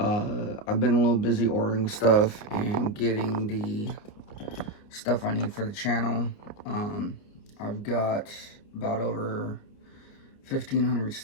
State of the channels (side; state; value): right; late; 29 ms